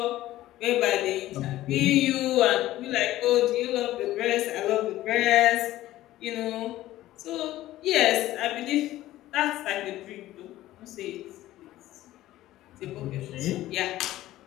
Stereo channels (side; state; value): right; quieter; 15.2 dB